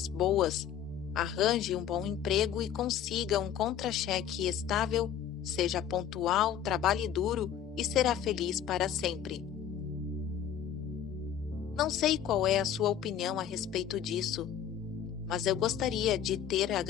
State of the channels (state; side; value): quieter; right; 9.5 dB